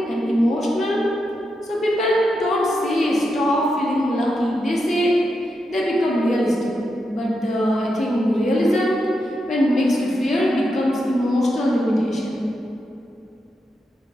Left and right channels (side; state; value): both; normal; correlation 0.85